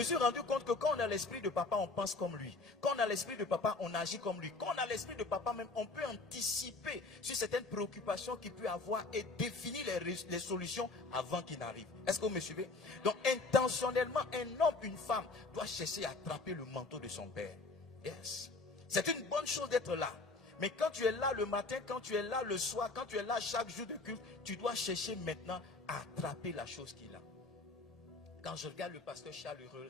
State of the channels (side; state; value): right; quieter; 3.5 dB